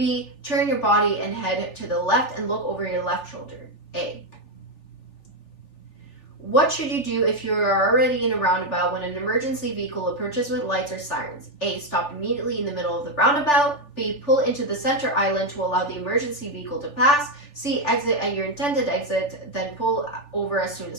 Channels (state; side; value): late; right; 3.4 ms